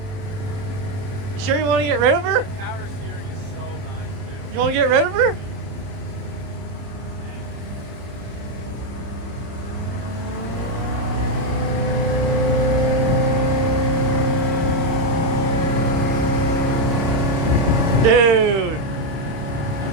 Sure you want to get rid of her? Power steering is so nice, too. You want to get rid of her? Dude. That's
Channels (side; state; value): left; late; 30 ms